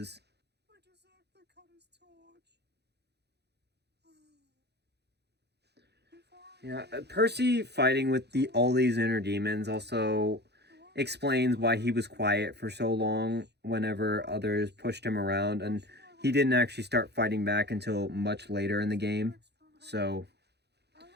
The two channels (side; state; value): left; late; 0.49 ms